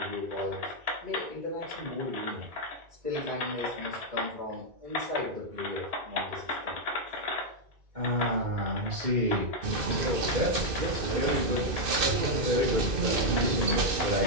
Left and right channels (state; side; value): late; left; 2.6 ms